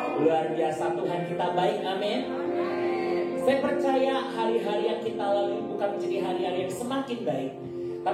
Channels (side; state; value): both; identical; correlation 1.00